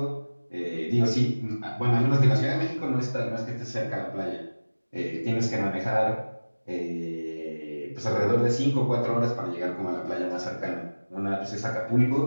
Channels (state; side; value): inverted; both; correlation -1.00